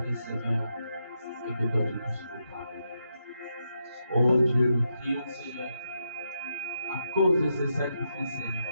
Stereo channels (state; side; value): inverted; both; correlation -0.83